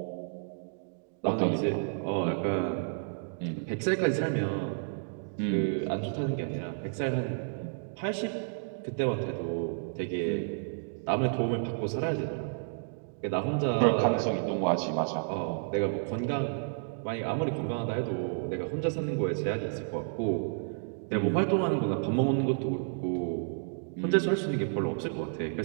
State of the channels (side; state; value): left; silent; digital silence